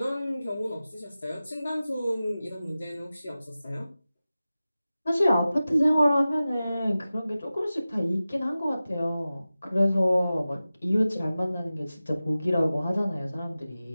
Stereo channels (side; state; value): both; inverted; correlation -0.95